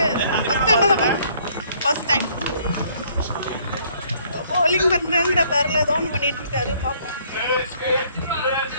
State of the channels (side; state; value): both; inverted; correlation -0.62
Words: ஃபர்ஸ்ட் டைம் bowling பண்ணுறேங்கிற பேரில் ஏதோ ஒன்று பண்ணிட்டு இருக்காரு. பார்ப்போம்.